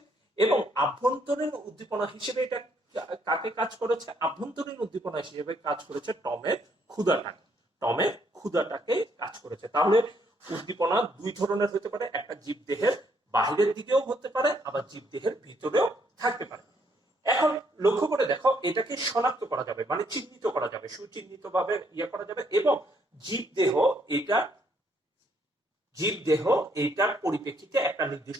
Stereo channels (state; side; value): normal; both; correlation 0.70